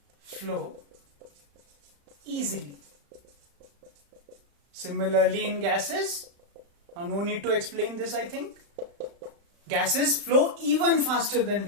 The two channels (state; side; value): late; left; 35 ms